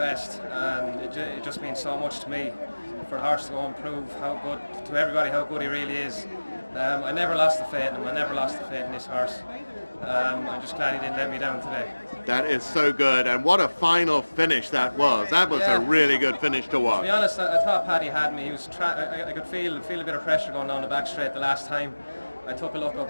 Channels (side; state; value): both; inverted; correlation -1.00